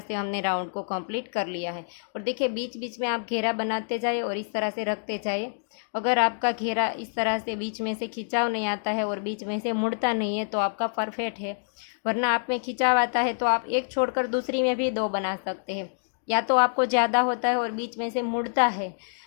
हमने राउंड को कंप्लीट कर लिया है। और देखिए बीच बीच में आप घेरा बनाते जाए और इस तरह से रखते जाए। अगर आपका घेरा इस तरह से बीच में से खिंचाव नहीं आता है और बीच में से मुड़ता नहीं है तो आपका परफेक्ट है। वरना आप में खिंचाव आता है तो आप एक छोड़कर दूसरी में भी 2 बना सकते हैं। या तो आपको ज़्यादा होता है और बीच में से मुड़ता है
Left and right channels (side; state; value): right; silent; digital silence